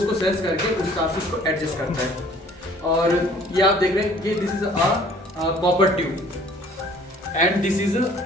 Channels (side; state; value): both; normal; correlation 0.54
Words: सेंस करके उस हिसाब से उसको एडजस्ट करता है. और ये आप देख रहे हैं कि this is a copper tube and this is